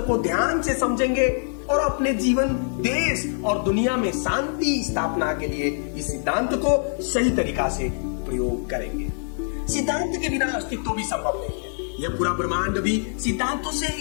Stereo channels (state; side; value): silent; right; digital silence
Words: को ध्यान से समझेंगे और अपने जीवन, देश और दुनिया में शांति स्थापना के लिए इस सिद्धांत को सही तरीका से प्रयोग करेंगे। सिद्धांत के बिना अस्तित्व भी संभव नहीं है। यह पूरा ब्रह्मांड भी सिद्धांतों से